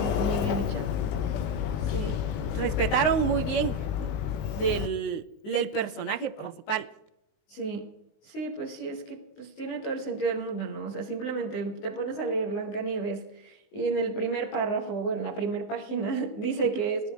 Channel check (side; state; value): right; late; 19 ms